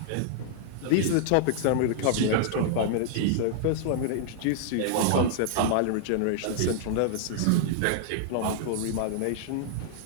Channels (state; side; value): different; both; correlation -0.01